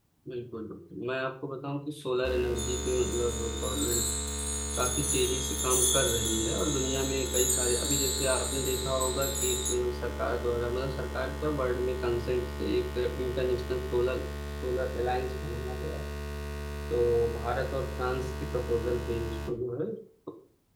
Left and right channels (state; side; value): identical; both; correlation 1.00